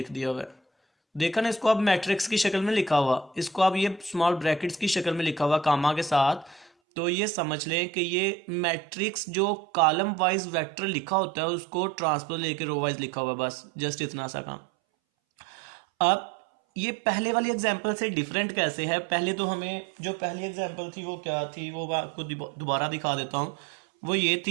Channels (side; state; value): left; drops out; at 6.7 s